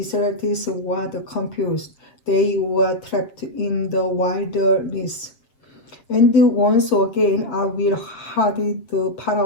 were confused. They were trapped in the wilderness. And once again I will harden the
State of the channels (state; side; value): late; right; 7.4 ms